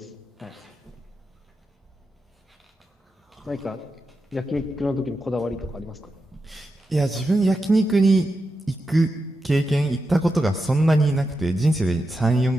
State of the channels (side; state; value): both; normal; correlation 0.88